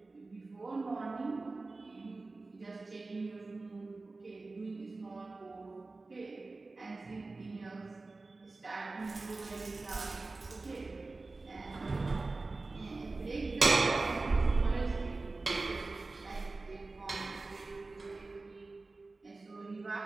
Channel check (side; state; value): left; quieter; 3.5 dB